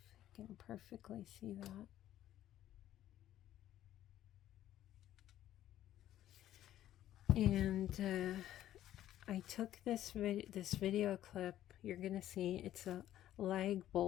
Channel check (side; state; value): right; quieter; 12.6 dB